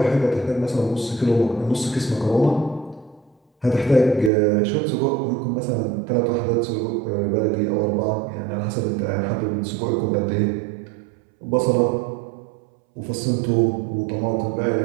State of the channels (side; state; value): left; drops out; at 4.3 s